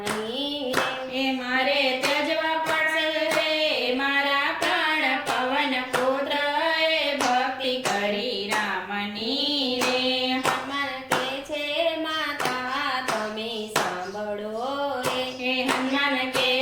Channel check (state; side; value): identical; both; correlation 1.00